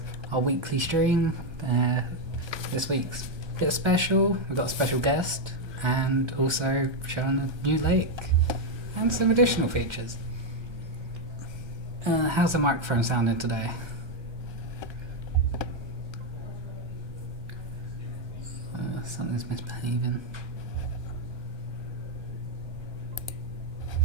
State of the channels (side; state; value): left; late; 1.3 ms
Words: our weekly stream. This week's a bit special. We've got a special guest and also showing a new lake and some additional features. How's the microphone sounding today? Something's misbehaving.